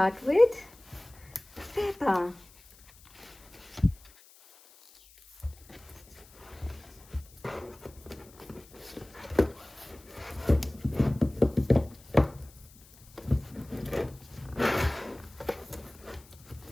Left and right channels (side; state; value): left; noise; hiss, 24 dB below the sound